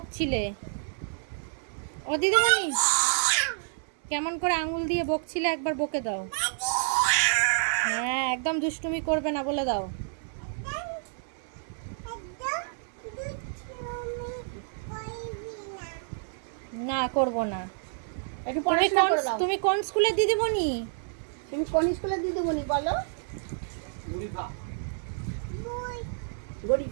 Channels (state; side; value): silent; left; 58 dB below the other